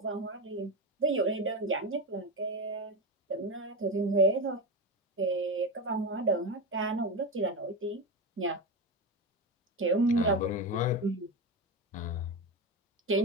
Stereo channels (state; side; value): normal; both; correlation 0.18